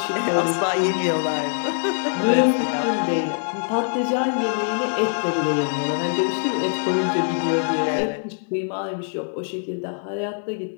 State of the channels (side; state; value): right; silent; 63 dB below the other